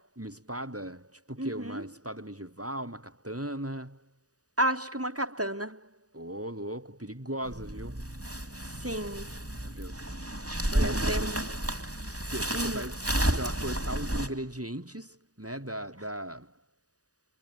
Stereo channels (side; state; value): left; late; 0.67 ms